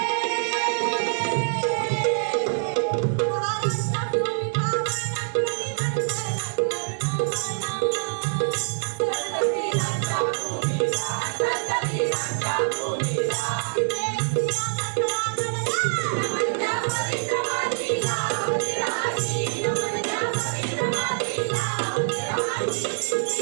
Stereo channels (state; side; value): silent; left; 60 dB below the other